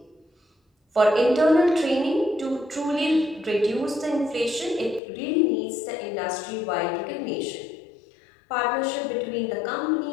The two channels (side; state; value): right; drops out; at 5.0 s